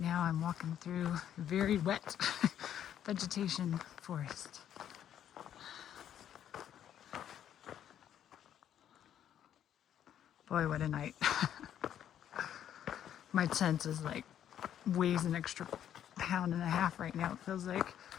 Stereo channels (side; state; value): right; quieter; 10.2 dB